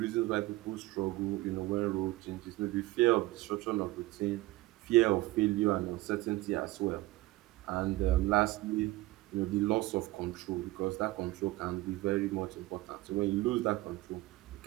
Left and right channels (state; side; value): quieter; left; 19.1 dB